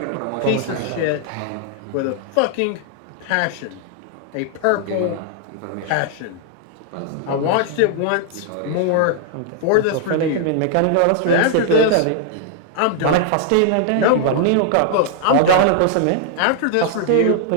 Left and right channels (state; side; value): different; both; correlation -0.01